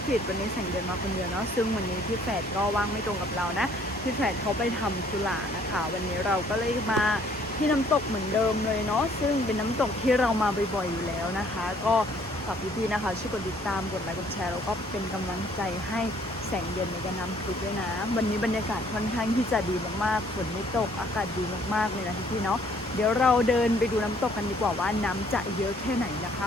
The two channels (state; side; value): normal; both; correlation 0.61